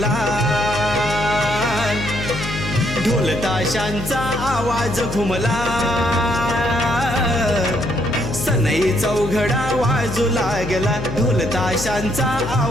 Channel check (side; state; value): left; noise; hum, 7 dB below the sound